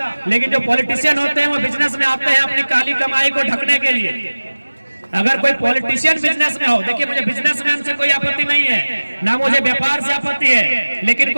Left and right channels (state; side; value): inverted; both; correlation -1.00